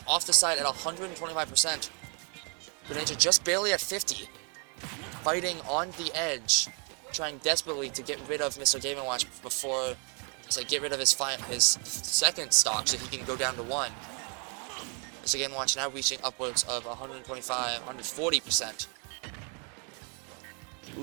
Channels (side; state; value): left; quieter; 38.6 dB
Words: off the side at 125%. Greninja just barely at 50. Fighting on the edge. Trying desperately to get rid of Mr. Game & Watch before... So get rid of his second stock so he can go down to 1. Mr. Game & Watch now reaching upwards of 125, 140%.